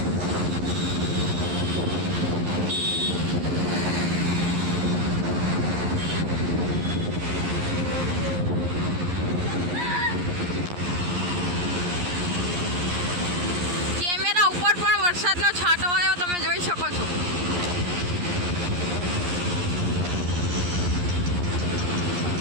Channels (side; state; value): left; late; 11 ms